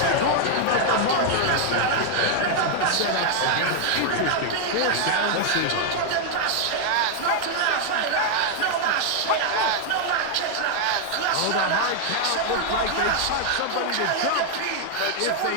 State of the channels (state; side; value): different; both; correlation 0.00